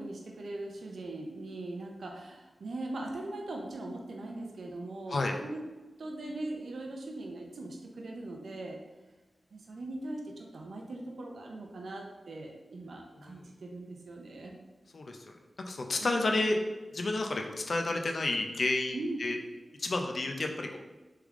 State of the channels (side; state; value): both; normal; correlation 0.93